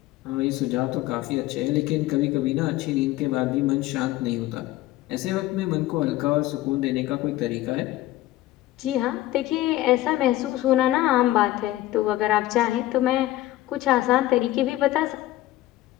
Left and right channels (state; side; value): quieter; right; 15.8 dB